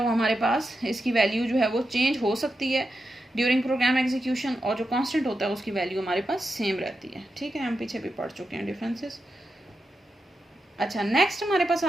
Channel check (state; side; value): normal; both; correlation 0.88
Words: वो हमारे पास, इसकी वैल्यू जो है वो चेंज हो सकती है ड्यूरिंग प्रोग्राम एग्जीक्यूशन, और जो कांस्टेंट होता है उसकी वैल्यू हमारे पास सेम रहती है। ठीक है, हम पीछे भी पढ़ चुके हैं डिफरेंसेस। अच्छा, नेक्स्ट हमारे पास